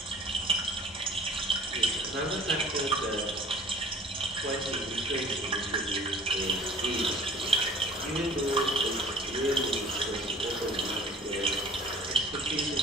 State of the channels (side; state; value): both; normal; correlation 0.48